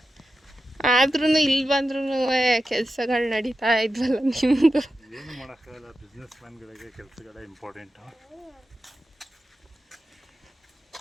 ಆದ್ರೂ ಇಲ್ಲಿ ಬಂದ್ರೂ ಕೆಲಸಗಳು ನಡೀತಾ ಇದ್ವಲ್ಲ ನಿಮ್ಮದು. ಏನು ಮಾಡೋಕ್ಕಾಗಲ್ಲ, ಬಿಸ್ನೆಸ್ ಮ್ಯಾನ್ಗಳಿಗೆ ಕೆಲಸಗಳೇ ಇಂಪಾರ್ಟೆಂಟು.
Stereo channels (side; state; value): both; normal; correlation 0.91